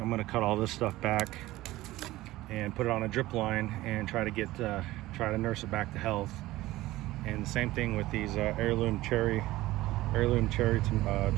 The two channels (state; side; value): quieter; left; 17.3 dB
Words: I'm going to cut all this stuff back and put it on a drip line and try to nurse it back to health. And the same thing with these heirloom cherry